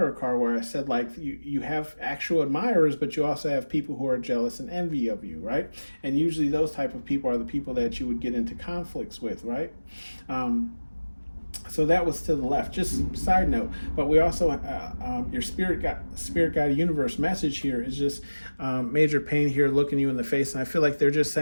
card, where I said, like, you have actual admirers, but you also have people who are jealous and envy of you, right? And usually those type of people are the people that you would get into conflicts with, right? So that was to the left. Just side note. But we also your spirit guide universe message here is just major pain here, looking you in the face, and I feel like they're just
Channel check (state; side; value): inverted; both; correlation -1.00